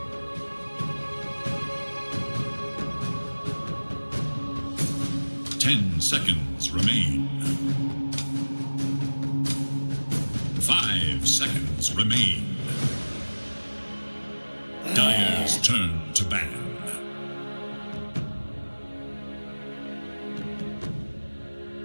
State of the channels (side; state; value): both; inverted; correlation -1.00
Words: 10 seconds remain. 5 seconds remain. Dire's turn to ban.